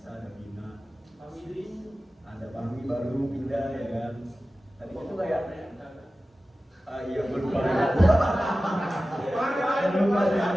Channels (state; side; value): normal; both; correlation 0.95